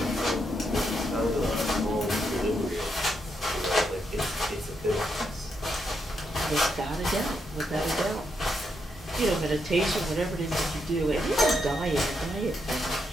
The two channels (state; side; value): normal; both; correlation 0.80